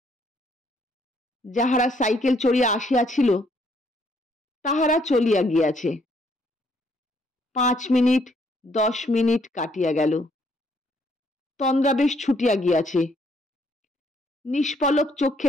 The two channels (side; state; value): both; normal; correlation 0.69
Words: যাহারা সাইকেল চড়িয়া আসিয়াছিল তাহারা চলিয়া গিয়াছে। 5 মিনিট 10 মিনিট কাটিয়া গেল। তন্দ্রা বেশ ছুটিয়া গিয়াছে। নিষ্পলক